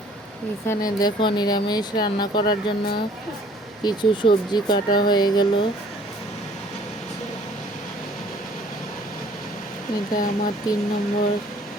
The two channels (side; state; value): both; normal; correlation 0.56